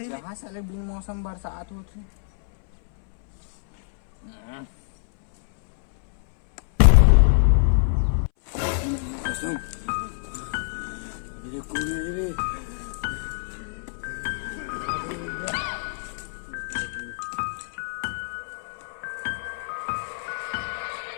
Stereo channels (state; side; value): silent; right; 61 dB below the other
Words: कहाँ साले बिन मौसम बरसात होती।